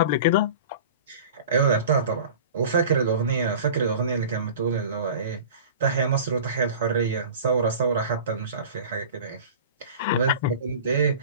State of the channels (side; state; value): both; inverted; correlation -0.38